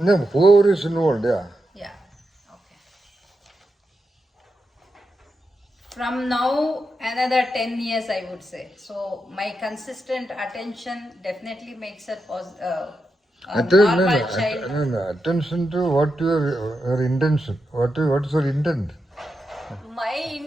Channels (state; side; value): normal; both; correlation 0.86